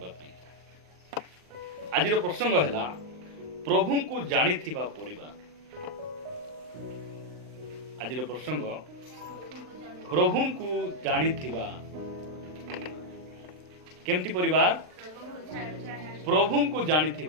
आज प्रसंग है प्रभु को जानी परिवार। आज प्रसंग प्रभु को जानी केमती परिवार, प्रभु को जानी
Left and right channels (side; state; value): left; late; 39 ms